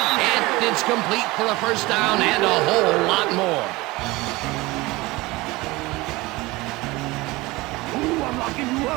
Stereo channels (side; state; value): left; quieter; 21.4 dB